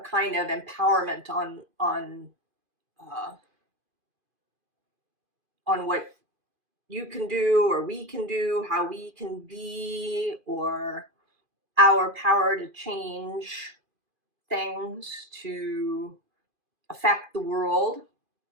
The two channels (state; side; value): late; left; 2.5 ms